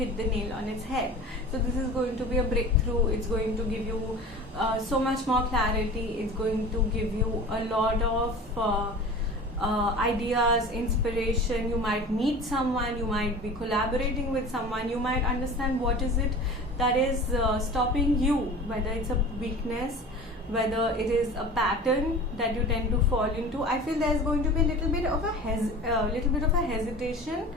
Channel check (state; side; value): normal; both; correlation 0.37